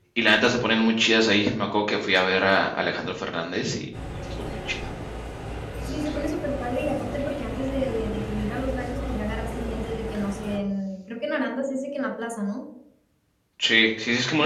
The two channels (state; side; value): identical; both; correlation 1.00